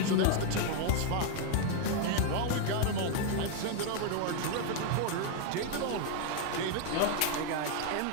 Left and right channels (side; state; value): both; different; correlation 0.00